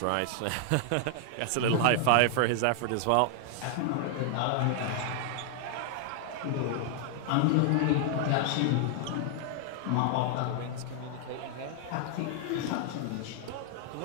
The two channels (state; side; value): different; both; correlation 0.00